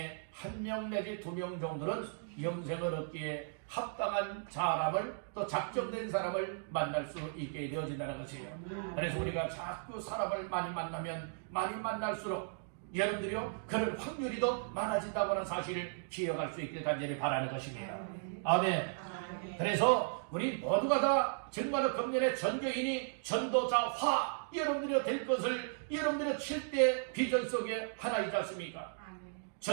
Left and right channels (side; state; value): left; silent; digital silence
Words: 1명 내지 2명 정도는 영생을 얻기에 합당한 사람을 또 작정된 사람을 만날 수 있게 되어진다는 것이에요. 그래서 우리가 자꾸 사람을 많이 만나면 많이 만날수록 여러분들이요 그런 확률이 더 많아진다고 하는 사실을 기억할 수 있길 간절히 바라는 것입니다. 아멘. 그래서 우리 모두가 다 정말로 금년에 전교인이 전도자화 여러분들이 될 것을 여러분들의 7대 비전 속에 하나이지 않습니까?